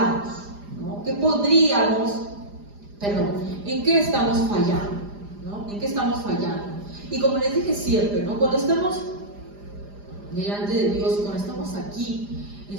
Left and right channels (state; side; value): late; left; 4.9 ms